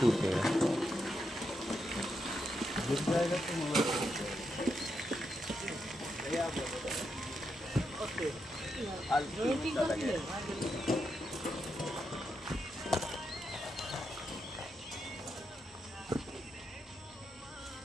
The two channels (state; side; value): normal; both; correlation 0.84